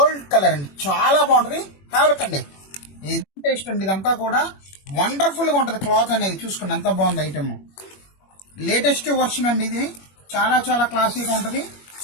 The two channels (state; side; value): late; right; 21 ms